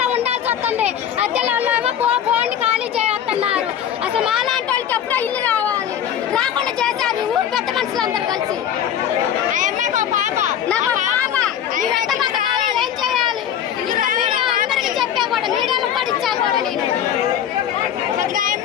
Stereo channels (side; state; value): right; quieter; 9.6 dB